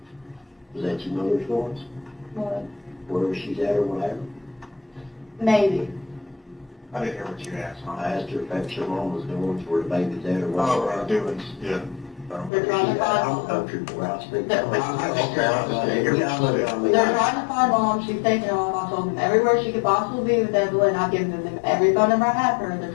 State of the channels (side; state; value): right; drops out; at 12.5 s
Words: Is that your mother's voice? What? Wherever she's at or whatever? Maybe. I didn't hear what you asked, I asked her if that's your mom was doing, where the baby's at or whatever. doings, yeah. They're trying to find I'm mom. country boy, I speak. They're trying to find mom. She's taking off. I told them everywhere she could possibly be with Evelyn. I've given them every phone number I have for her. They're